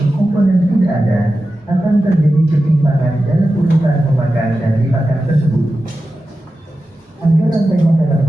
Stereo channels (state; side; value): normal; both; correlation 0.93